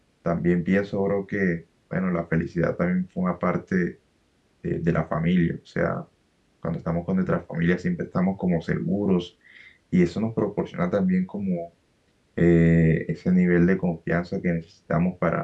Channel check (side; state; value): both; identical; correlation 1.00